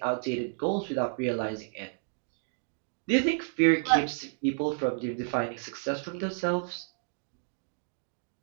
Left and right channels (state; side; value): silent; left; 56 dB below the other